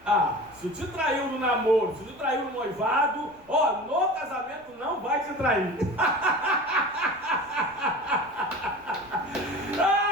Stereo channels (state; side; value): noise; left; rumble, 29 dB below the sound